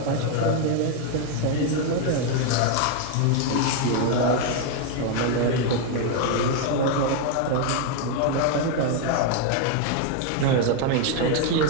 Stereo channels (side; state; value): both; different; correlation 0.01